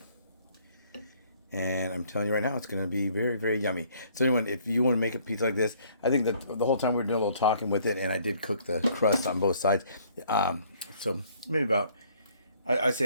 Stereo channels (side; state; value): both; inverted; correlation -0.61